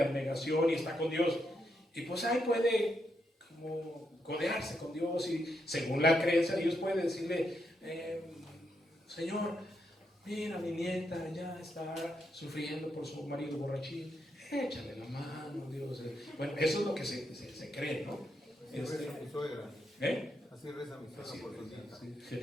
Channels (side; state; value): both; normal; correlation 0.81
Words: abnegación y está con Dios, y pues ahí puede como codearse con Dios, y según la creencia Dios puede decirle: Señor, mira, mi nieta ya está sufriendo por su marido borrachín, échale la mano, Dios. Bueno, eso es lo que se cree, ¿no? Así reza mi suegra. Así reza mi suegra por su nieta. Sí.